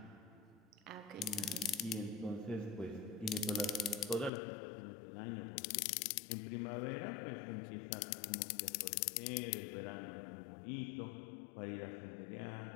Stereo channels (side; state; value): right; drops out; at 4.3 s